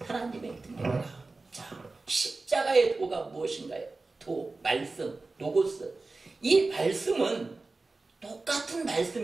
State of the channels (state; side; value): quieter; left; 3.5 dB